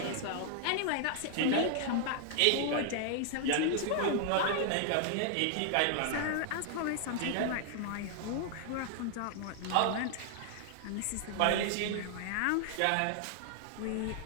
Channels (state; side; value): different; both; correlation -0.01